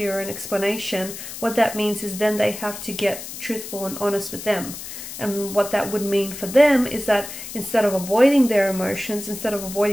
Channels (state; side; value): noise; left; hiss, 10 dB below the sound